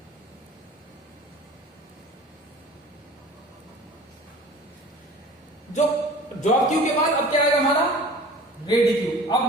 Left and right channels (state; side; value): normal; both; correlation 0.43